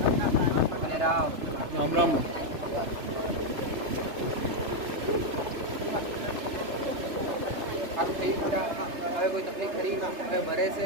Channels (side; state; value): left; late; 3.3 ms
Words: ભલે રામ રામ રામ આપ થઈ ગયા હવે કોઈ તકલીફ ખરી હવે ભરે